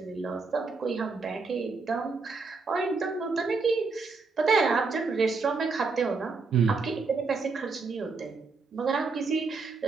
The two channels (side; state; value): left; quieter; 4.3 dB